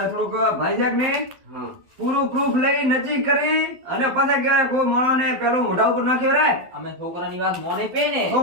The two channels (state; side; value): late; left; 12 ms